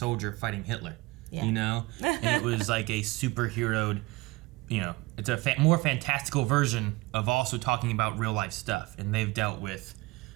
fighting Hitler. Yeah. You know? And it was like a superheroed, you know, it's a more fantastical version of also talking about real life stuff. And they've dealt with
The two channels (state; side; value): quieter; left; 21.8 dB